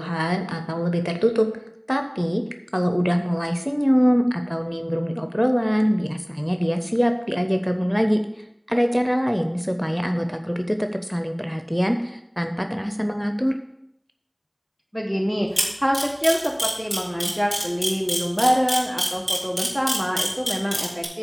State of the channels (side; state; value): both; identical; correlation 1.00